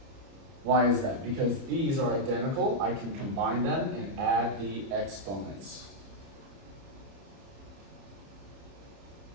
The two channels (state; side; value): late; left; 30 ms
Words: Why is that? Because these are identical. I can combine them and add the exponents.